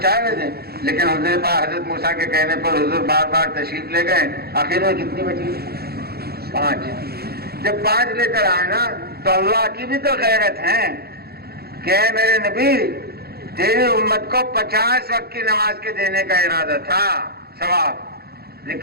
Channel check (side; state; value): left; late; 0.46 ms